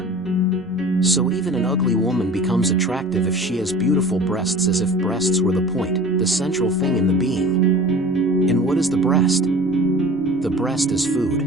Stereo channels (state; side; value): normal; both; correlation 0.41